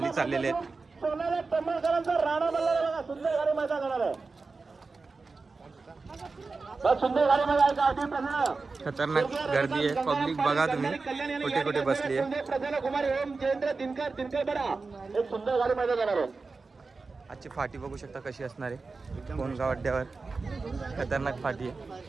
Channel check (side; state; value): left; quieter; 4.1 dB